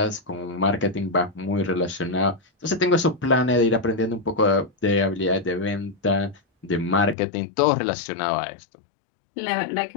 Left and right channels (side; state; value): right; drops out; at 7.2 s